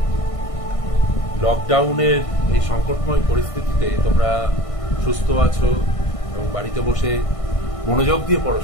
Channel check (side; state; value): right; late; 1.6 ms